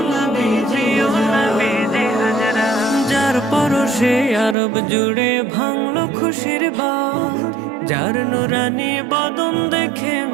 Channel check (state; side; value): drops out; left; at 4.5 s